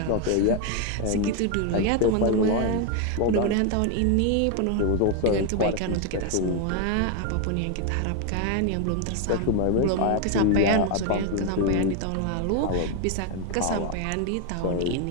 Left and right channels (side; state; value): both; different; correlation 0.01